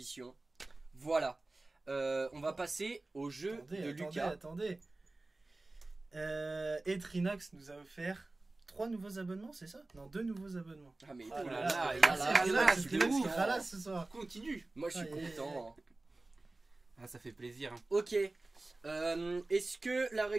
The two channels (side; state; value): left; quieter; 3.1 dB